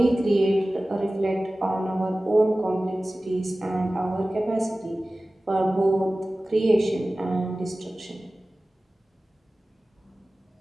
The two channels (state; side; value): normal; both; correlation 0.97